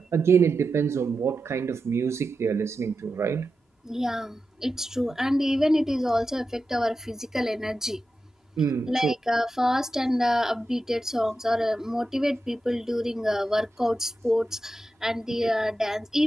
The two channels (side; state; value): both; normal; correlation 0.91